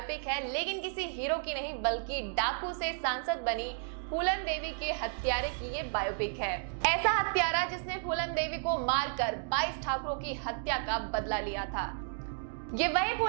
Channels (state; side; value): silent; left; digital silence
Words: है, लेकिन किसी हीरो की नहीं बल्कि डाकू से सांसद बनी फूलन देवी के हत्यारे की ये बायोपिक है। ऐसा हत्यारा जिसने फूलन देवी को मारकर 22 ठाकुरों की हत्या का बदला लिया था। ये वही